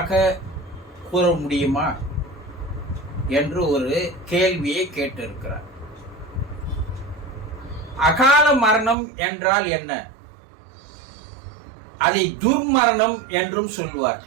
கூற முடியுமா என்று ஒரு கேள்வியை கேட்டிருக்கிறார். அகால மரணம் என்றால் என்ன? அதை துர்மரணம் என்றும்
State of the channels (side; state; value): left; drops out; at 9.0 s